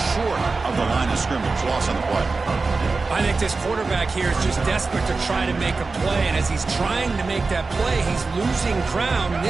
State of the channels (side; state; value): left; quieter; 4.0 dB